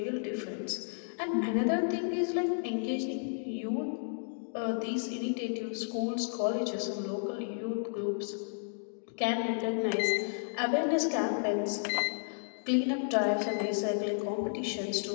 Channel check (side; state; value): right; silent; digital silence